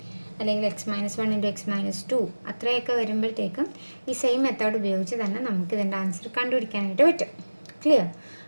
അല്ലെങ്കിൽ x-1 × x-2 അത്രയൊക്കെ വരുമ്പോഴത്തേക്കും ഈ സെയിം മെത്തേഡ് ഉപയോഗിച്ച് തന്നെ നമുക്ക് ഇതിൻ്റെ ആൻസർ കണ്ടുപിടിക്കാനായിട്ട് പറ്റും. ക്ലിയർ?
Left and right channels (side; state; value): both; inverted; correlation -1.00